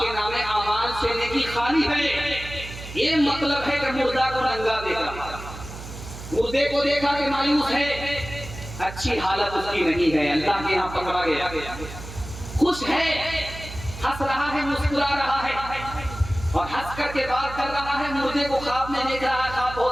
नामे अमाल से नेकी खाली है, ये मतलब है कि मुर्दा को नंगा देखा, मुर्दे को देखा कि मायूस है, अच्छी हालत उसकी नहीं है, अल्लाह के यहाँ पकड़ा गया, खुश है, हंस रहा है, मुस्कुरा रहा है, और हंस करके बात कर रहा है, मुर्दे को ख्वाब में देख रहा है, ख्वाब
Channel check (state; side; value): noise; right; hum, 12 dB below the sound